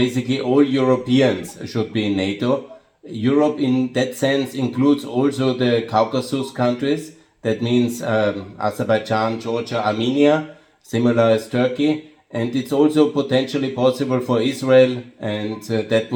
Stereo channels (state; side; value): identical; both; correlation 1.00